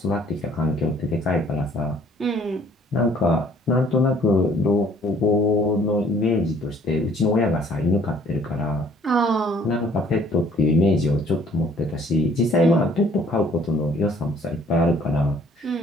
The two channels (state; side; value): normal; both; correlation 0.59